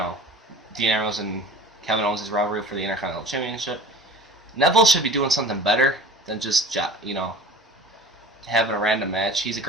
Ambrose and Kevin Owens' rivalry for the Intercontinental Championship. Neville should be doing something better than just, having a random match. He's a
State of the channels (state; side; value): normal; both; correlation 0.40